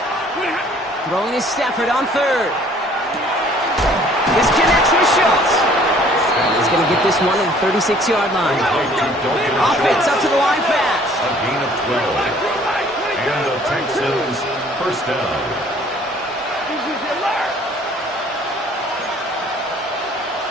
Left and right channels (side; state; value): both; normal; correlation 0.56